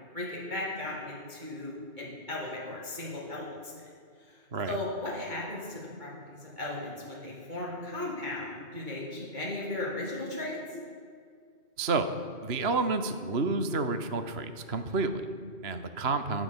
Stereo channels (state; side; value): late; left; 2.2 ms